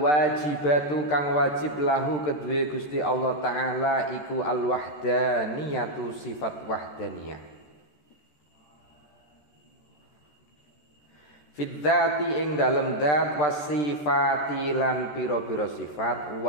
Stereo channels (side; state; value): right; late; 13 ms